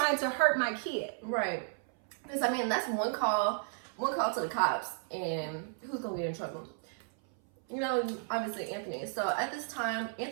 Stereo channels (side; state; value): left; silent; 55 dB below the other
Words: to hurt my kid. Right. Because, I mean, that's one call to the cops, and who's going to get in trouble? You know, obviously Anthony. So at this time,